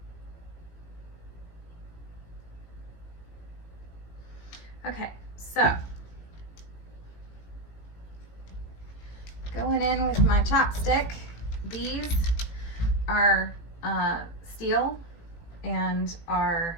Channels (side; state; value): right; late; 18 ms